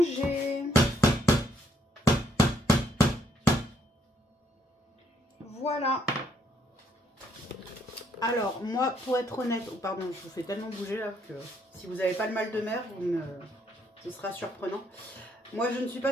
Voilà. Alors, moi, pour être honnête, oh, pardon, je vous fais tellement bouger là que si vous n'avez pas le mal de mer, ce sera surprenant. Moi, je ne suis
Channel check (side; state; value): both; normal; correlation 0.71